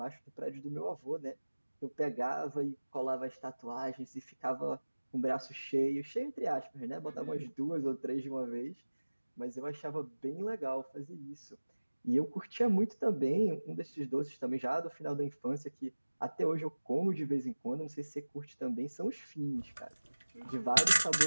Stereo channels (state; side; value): inverted; both; correlation -1.00